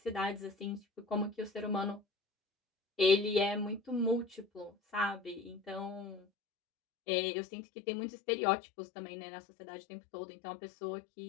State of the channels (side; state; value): right; drops out; at 6.2 s